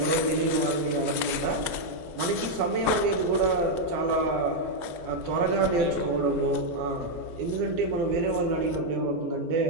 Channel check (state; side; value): late; left; 12 ms